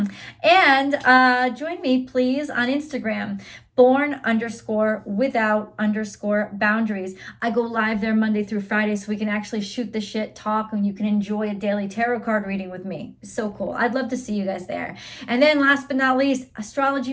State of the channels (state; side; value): identical; both; correlation 1.00